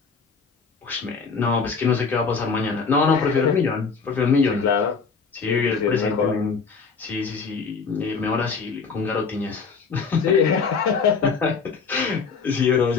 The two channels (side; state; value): right; quieter; 5.2 dB